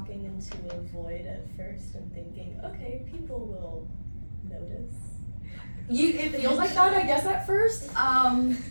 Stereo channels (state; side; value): inverted; both; correlation -1.00